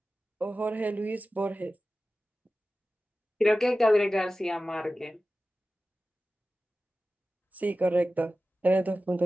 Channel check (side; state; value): both; normal; correlation 0.95